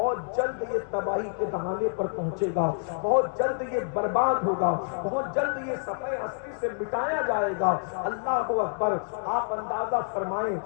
جلد یہ تباہی کے دہانے پر پہنچے گا، بہت جلد یہ برباد ہوگا، بہت جلد یہ صفحے ہستی سے مٹایا جائے گا۔ اللہ اکبر۔ آپ اندازہ فرمائیں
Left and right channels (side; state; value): right; silent; digital silence